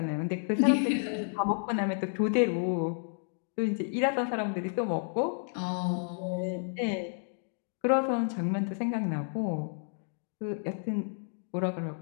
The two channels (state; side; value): silent; right; digital silence